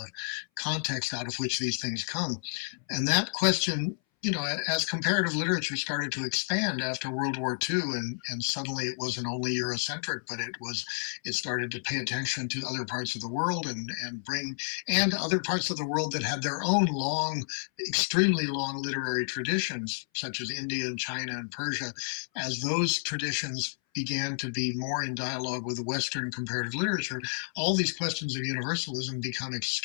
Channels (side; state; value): right; silent; 57 dB below the other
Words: context out of which these things come? And that question, as comparative literature started to expand after World War II, and suddenly it wasn't only Eurocentric, but it started to pay attention to other parts of the world and other parts of the world that had their own extremely long literary traditions, such as India and China and Persia. As those traditions began to be more in dialogue with Western comparative literature, all these questions of universalism become